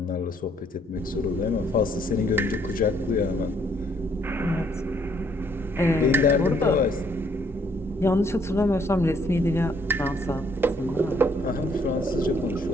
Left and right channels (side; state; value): both; normal; correlation 0.67